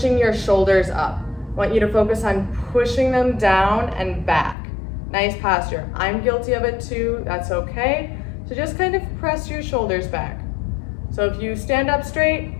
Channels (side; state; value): right; drops out; at 4.5 s